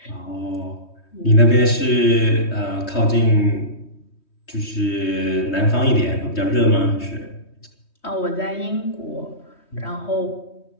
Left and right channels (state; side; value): late; right; 3.2 ms